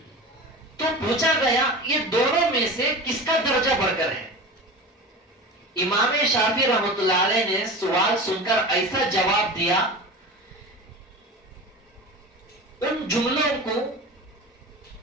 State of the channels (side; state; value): both; normal; correlation 0.31